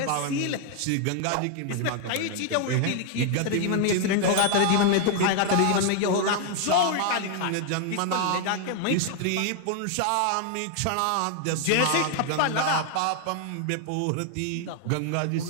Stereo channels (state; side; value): different; both; correlation 0.00